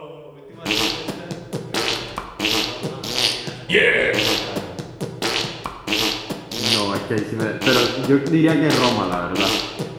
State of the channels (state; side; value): identical; both; correlation 1.00